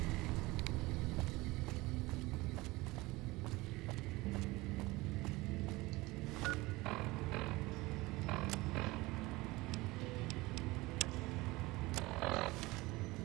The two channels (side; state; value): left; quieter; 21.3 dB